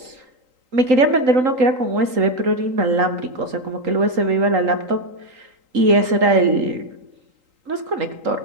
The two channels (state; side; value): late; left; 3.8 ms